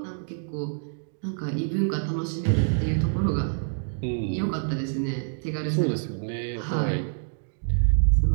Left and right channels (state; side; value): silent; left; digital silence